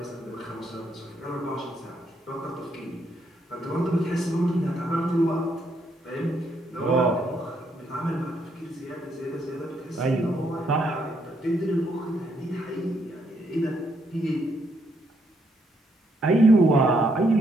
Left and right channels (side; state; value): both; normal; correlation 0.74